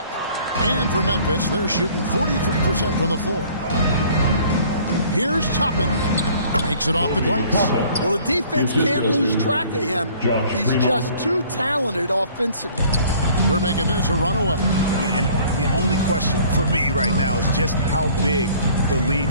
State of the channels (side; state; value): both; inverted; correlation -0.54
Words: And for Memphis, they're shooting 43% from the floor. Here's Toppin. Takes it off the glass. Well, the defense can't lose track of him. He's just too talented offensively. They're making this a runaway. And the only question for me right now is just how big the lead